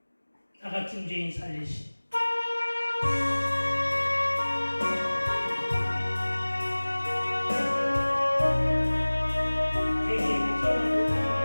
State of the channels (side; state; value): both; inverted; correlation -1.00